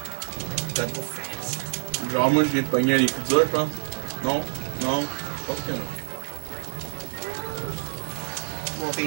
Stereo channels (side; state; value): left; silent; digital silence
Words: T'as go fast. Genre moi je viens de pogner les coups durs, je pense. Non, non, je pense que non.